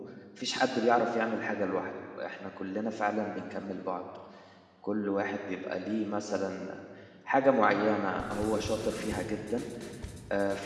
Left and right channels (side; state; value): both; identical; correlation 1.00